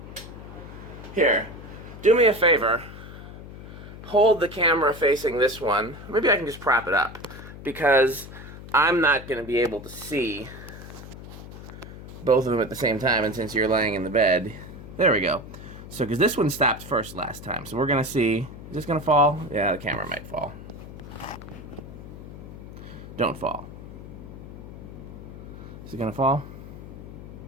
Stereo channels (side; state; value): left; noise; hum, 13 dB below the sound